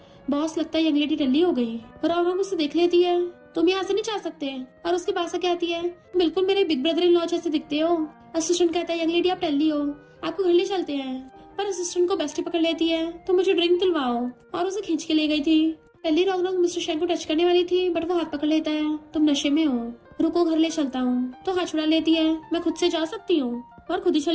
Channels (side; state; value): both; identical; correlation 1.00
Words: बॉस लगता है यंग लेडी टल्ली हो गई। रौनक उससे देख लेती है तुम यहाँ से नहीं जा सकते और उसके पास से कहती है बिल्कुल मेरे बिग ब्रदर इन लॉ जैसे दिखते हो। असिस्टेंट कहता है यंग लेडी आप टल्ली हो, आपको घर ले चलते हैं। पर असिस्टेंट को बेस्टी पकड़ लेती है तो मुझे ड्रिंक दिलवाओ और उसे खींच के ले गई थी। पहली रौनक मिस्टर शेंग को टच करने वाली थी, बट वो हाथ पकड़ लेता है। तुम नशे में हो, रुको घर ले चलता हूँ। तो हाथ छुड़ा लेती है, मैं खुद से जा सकती हूँ, और खुद ही